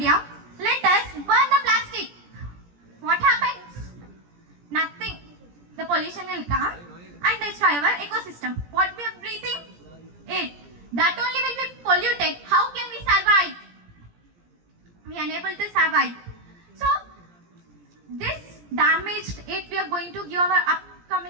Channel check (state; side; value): late; left; 17 ms